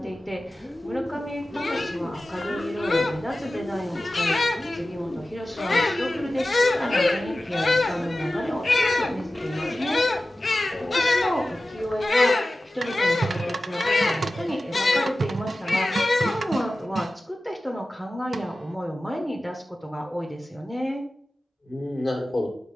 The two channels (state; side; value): normal; both; correlation 0.95